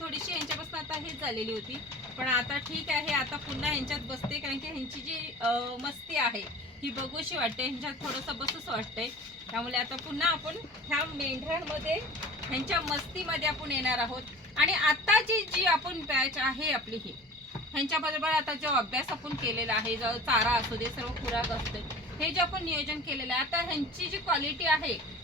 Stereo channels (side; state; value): both; normal; correlation 0.40